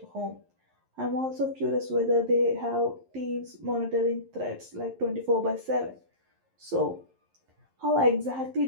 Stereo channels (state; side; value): late; left; 11 ms